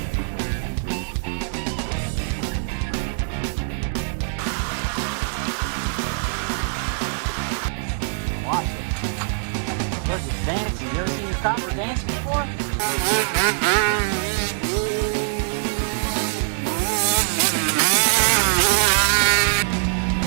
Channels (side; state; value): left; silent; 63 dB below the other